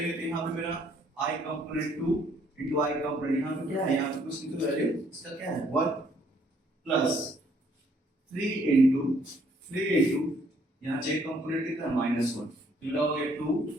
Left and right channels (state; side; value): normal; both; correlation 0.65